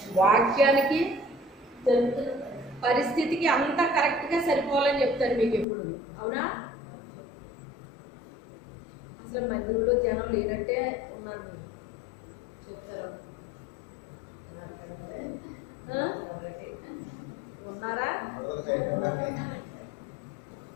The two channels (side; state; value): right; drops out; at 5.7 s